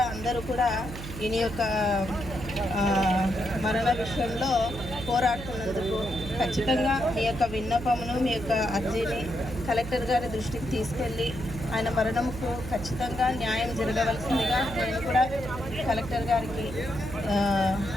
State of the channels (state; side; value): noise; right; hum, 10 dB below the sound